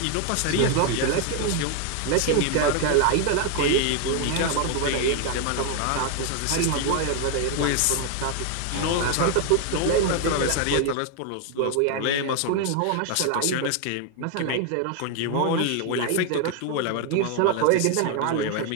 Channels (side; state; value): both; different; correlation 0.01